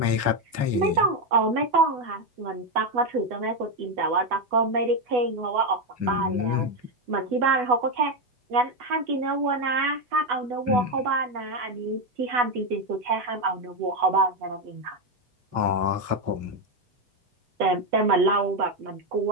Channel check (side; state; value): left; late; 8.2 ms